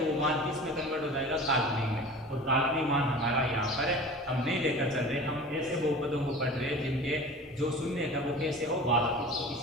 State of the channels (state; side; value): normal; both; correlation 0.38